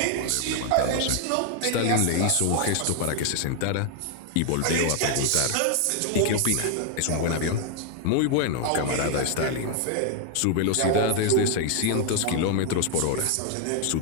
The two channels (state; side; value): different; both; correlation 0.00